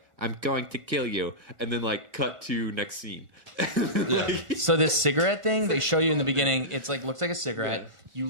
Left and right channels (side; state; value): left; late; 1.5 ms